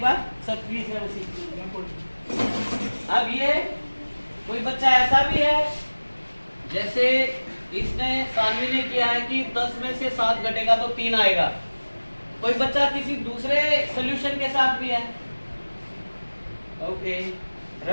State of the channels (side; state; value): both; inverted; correlation -1.00